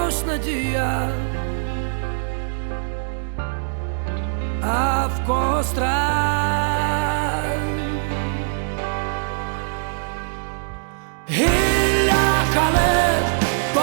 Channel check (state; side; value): silent; left; digital silence